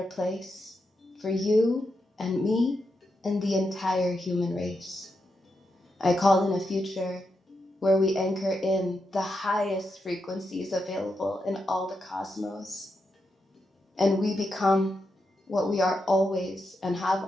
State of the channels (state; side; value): normal; both; correlation 0.85